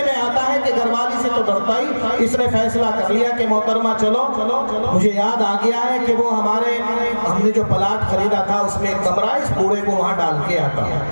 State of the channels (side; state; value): both; inverted; correlation -1.00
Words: میں آتا ہے کہ گھر والی سے تو ڈرتا ہی. اس نے فیصلہ کر لیا کہ محترمہ چلو. مجھے یاد آ گیا ہے کہ وہ ہم نے جو پلاٹ خریدا تھا اس میں ایک کمرہ، اس بوڑھے کو وہاں ڈال کے آتا.